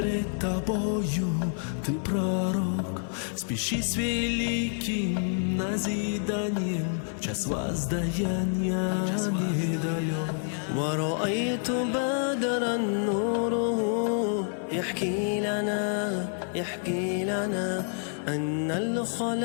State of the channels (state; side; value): silent; right; 59 dB below the other